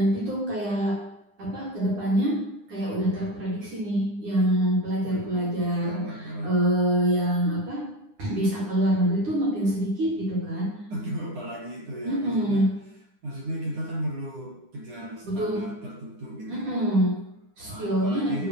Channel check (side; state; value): left; late; 9.8 ms